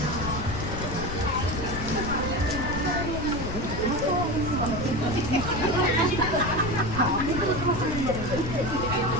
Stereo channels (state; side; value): noise; left; rumble, 6 dB below the sound